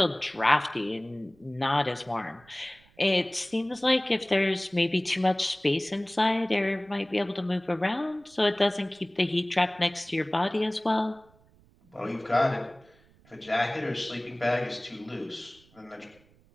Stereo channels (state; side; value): noise; right; rumble, 30 dB below the sound